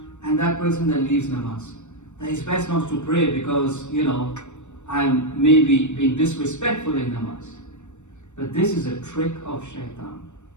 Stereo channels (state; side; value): late; right; 0.84 ms